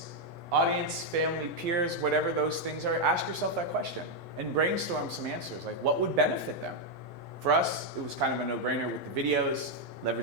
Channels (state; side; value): normal; both; correlation 0.00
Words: audience, family, peers, whatever those things are? Ask yourself that question and brainstorm some answers. What would benefit them? For us, it was kind of a no-brainer with the videos,